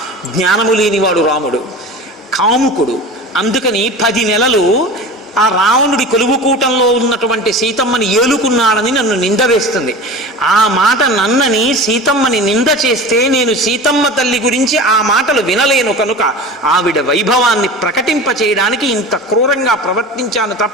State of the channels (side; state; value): both; normal; correlation 0.34